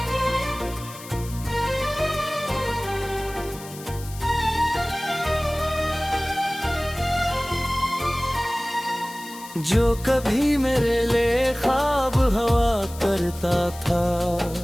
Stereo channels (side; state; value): left; noise; hiss, 16 dB below the sound